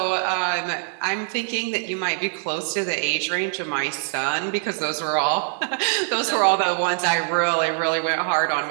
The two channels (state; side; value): silent; left; 63 dB below the other